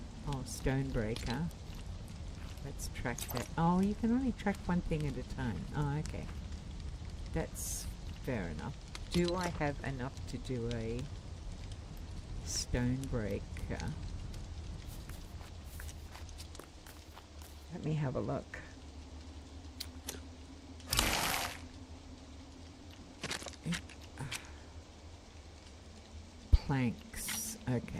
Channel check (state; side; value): identical; both; correlation 1.00